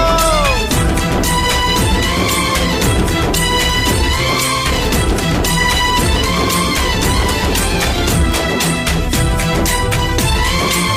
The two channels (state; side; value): identical; both; correlation 1.00